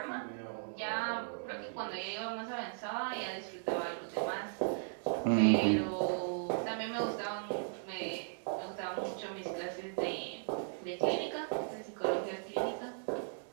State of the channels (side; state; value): left; silent; digital silence